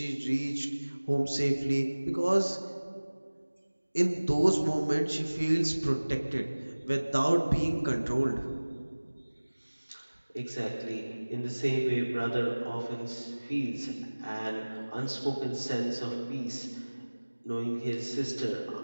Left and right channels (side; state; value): both; inverted; correlation -1.00